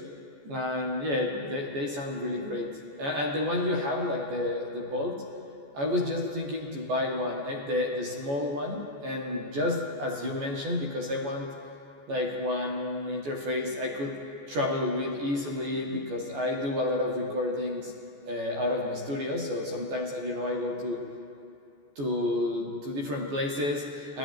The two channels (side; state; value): left; late; 14 ms